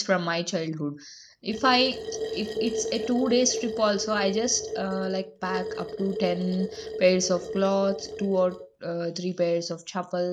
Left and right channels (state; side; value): identical; both; correlation 1.00